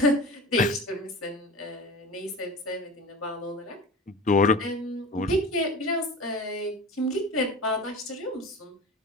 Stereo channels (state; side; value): normal; both; correlation 0.34